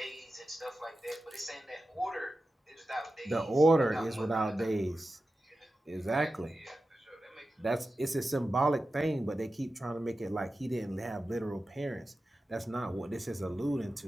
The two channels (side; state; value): both; normal; correlation 0.93